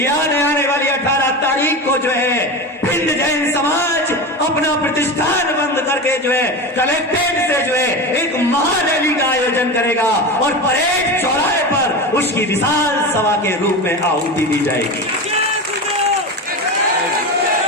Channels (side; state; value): both; normal; correlation 0.24